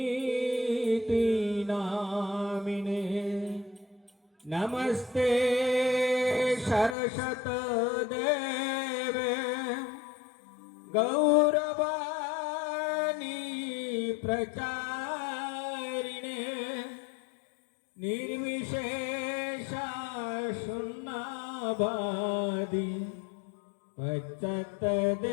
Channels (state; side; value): drops out; right; at 7.0 s